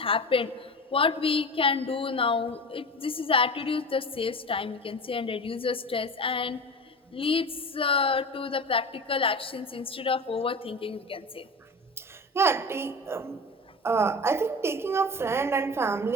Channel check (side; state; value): both; normal; correlation 0.31